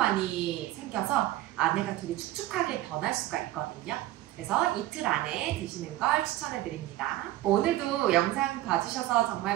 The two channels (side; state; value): left; quieter; 15.2 dB